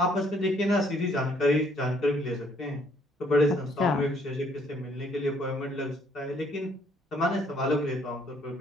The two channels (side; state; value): both; normal; correlation 0.65